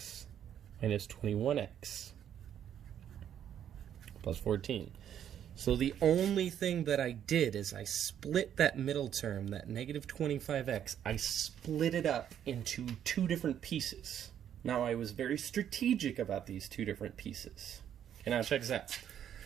minus 21x plus 14. So the only thing that I did is I split that middle term, that negative 25x, I split it up into two different pieces. Now I was very strategic about these two different pieces. Okay, now check this out.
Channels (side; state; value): left; quieter; 9.7 dB